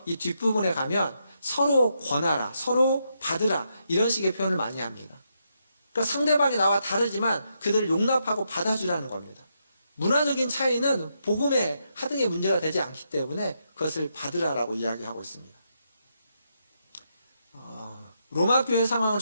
이 뒷부분에 가면 서로 권하라, 서로 받으라, 이런 식의 표현을 많이 합니다. 그러니까 상대방이 나와 다르지만 그들을 용납하고 받아주라는 겁니다. 문화적인 차이는 복음의 하등의 문제가 되지 않기 때문에 그것을 받으라라고 이야기하고 있습니다. 로마 교회 상황을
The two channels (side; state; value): both; inverted; correlation -0.80